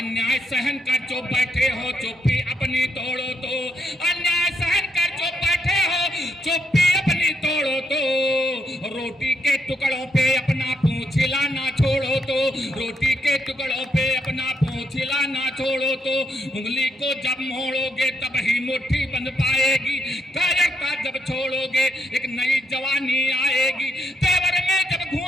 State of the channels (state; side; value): normal; both; correlation 0.77